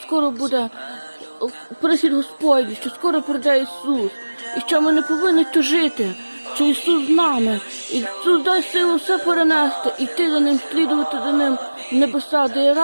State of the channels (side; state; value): both; inverted; correlation -1.00